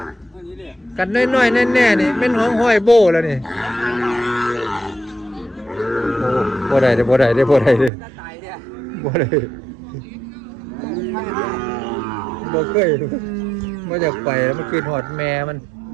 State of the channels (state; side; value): drops out; left; at 7.9 s